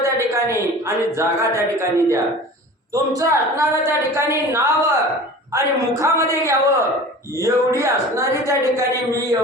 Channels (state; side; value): normal; both; correlation 0.39